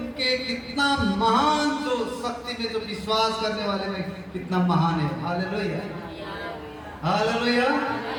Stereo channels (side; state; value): both; identical; correlation 1.00